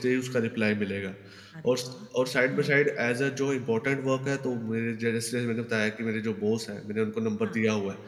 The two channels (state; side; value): identical; both; correlation 1.00